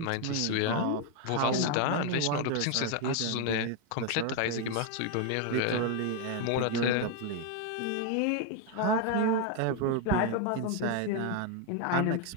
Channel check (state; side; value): different; both; correlation 0.01